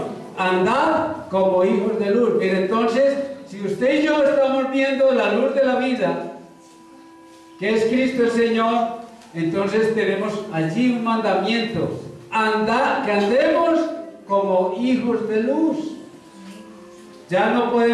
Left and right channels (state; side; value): identical; both; correlation 1.00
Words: andad como hijos de luz. Mire, entonces, si usted y yo estamos viendo la luz de la vida, que es Cristo el Señor, entonces tenemos allí un mandamiento: que andemos como hijos de luz. Ya no